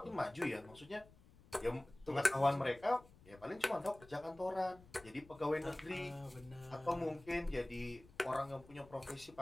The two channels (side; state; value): left; noise; rumble, 23 dB below the sound